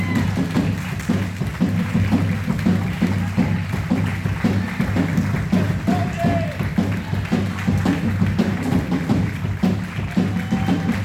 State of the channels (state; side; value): identical; both; correlation 1.00